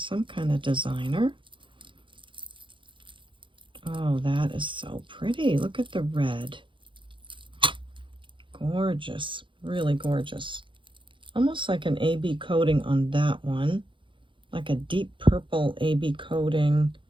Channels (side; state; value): left; late; 0.24 ms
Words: kind of designer. Oh, that is so pretty. Look at the red. Gorgeous. Really gorgeous. Almost like an AB coating on that one. Like a deep purple AB coating.